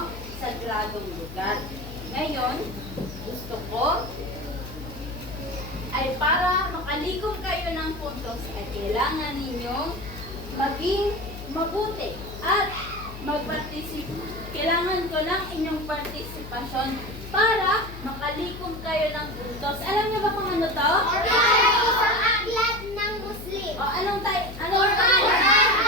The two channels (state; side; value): noise; left; hum, 12 dB below the sound